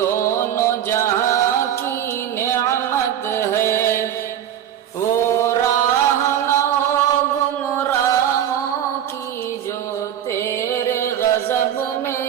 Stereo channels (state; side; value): quieter; left; 10.2 dB